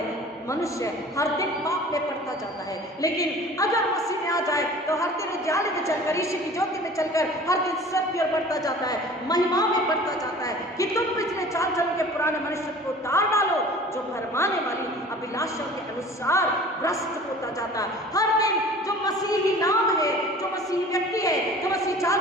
मनुष्य हर दिन पाप में पड़ता जाता है। लेकिन अगर मसीह में आ जाए तो हर दिन उजाले में चलकर, यीशु की ज्योति में चलकर हर दिन सत्य की ओर बढ़ता जाता है, महिमा में बढ़ता जाता है कि तुम पिछले चाल चलन के पुराने मनुष्य को उतार डालो जो भरमाने वाली अभिलाषा के अनुसार भ्रष्ट होता जाता है। हर दिन जो मसीही नाम है, जो मसीही व्यक्ति है, जो मसीही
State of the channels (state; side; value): normal; both; correlation 0.44